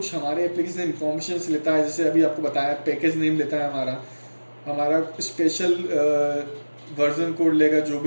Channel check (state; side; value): inverted; both; correlation -1.00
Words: हमारे एप्लीकेशन इन्फॉर्मेशन लेता है, जैसे अभी आपको बताया पैकेज नेम लेता है, हमारा स्पेशल वर्जन कोड लेगा, जो